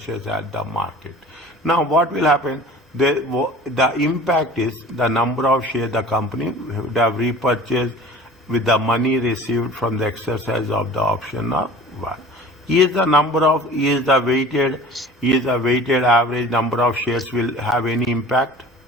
at the market. Now what will happen? The impact is the number of shares the company would have repurchased with the money received from the exercise of the option of one. Is the weighted average number of shares will have any impact?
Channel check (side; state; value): both; normal; correlation 0.43